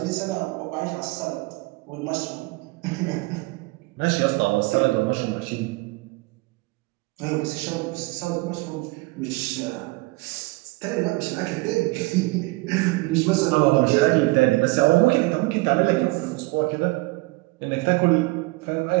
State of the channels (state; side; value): quieter; left; 23.7 dB